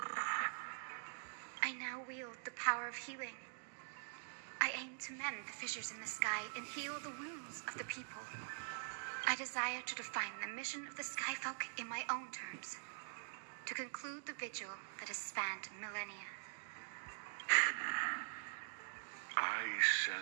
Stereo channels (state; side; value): silent; left; digital silence